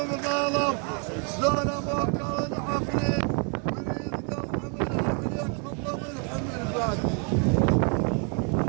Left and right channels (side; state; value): left; quieter; 38.2 dB